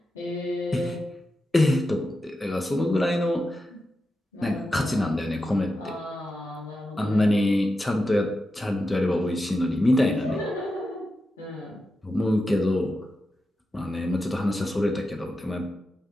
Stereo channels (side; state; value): both; normal; correlation 0.89